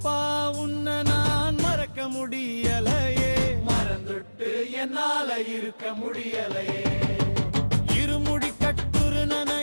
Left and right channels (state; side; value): inverted; both; correlation -1.00